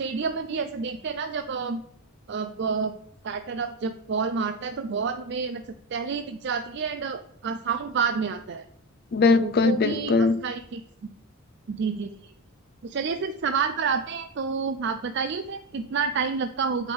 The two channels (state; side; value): normal; both; correlation 0.15